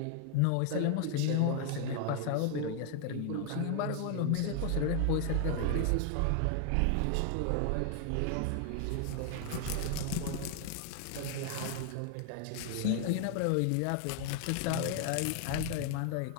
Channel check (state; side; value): different; both; correlation 0.00